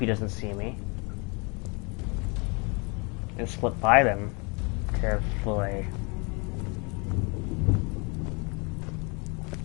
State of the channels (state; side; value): quieter; right; 31.2 dB